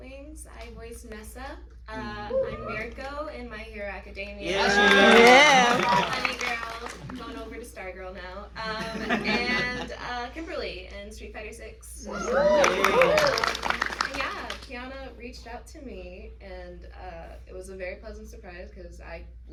I voice Nessa. I'm Mirko in My Hero Academia. Honey Girl, going over to Stargirl now. And Kimberly in Street Fighter 6. Yeah, Kiana reached out to me, and it was a very pleasant surprise because I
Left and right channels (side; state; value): both; identical; correlation 1.00